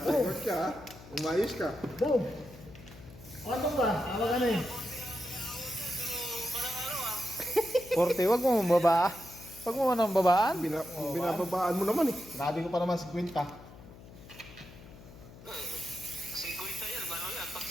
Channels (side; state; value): left; noise; hum, 19 dB below the sound